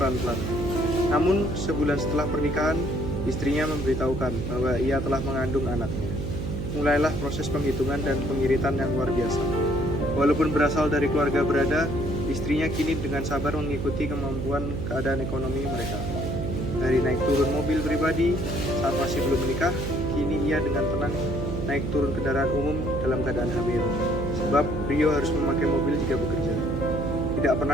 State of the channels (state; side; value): noise; right; hum, 4 dB below the sound